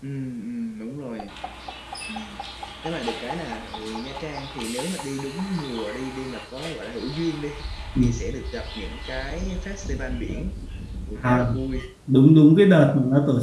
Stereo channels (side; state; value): both; identical; correlation 1.00